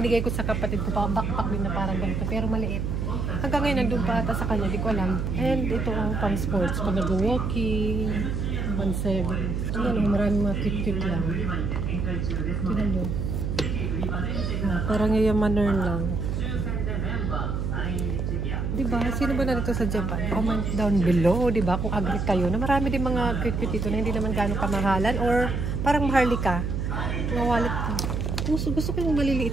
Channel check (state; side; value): noise; right; hum, 1 dB below the sound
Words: ko sa kapatid ko pa. Backpack din na parang ganito. Pero maliit. Hanggang ngayon, nandun pa ata sa kanya. Di ko alam. And ito ang pang sports. Pag nag-walking. 1.7. Ayan, maraming mga cute lang. Tignan nyo. Parang yayamaner lang. Diba? Sino ba na dito sa Japan? Comment down below, diba? Kung agree kayo na marami din mga cute dito na hindi naman gano'ng kamahalan or parang maharlika. Mga wallet. Gusto ko yung